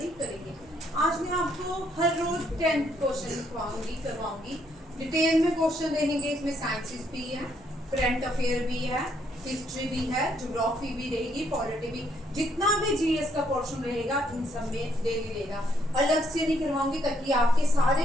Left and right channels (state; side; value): normal; both; correlation 0.71